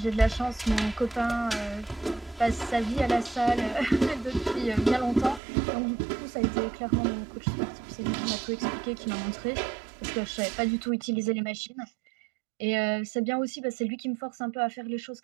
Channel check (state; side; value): drops out; left; at 5.4 s